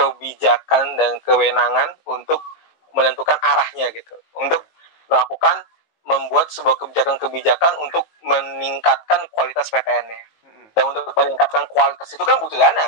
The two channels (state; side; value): late; right; 19 ms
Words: dan kewenangan untuk menentukan arahnya gitu, untuk Iya. melakukan membuat sebuah kebijakan-kebijakan untuk meningkatkan kualitas PTN-nya. Mm-mm. Dan untuk meningkatkan kualitas itu kan butuh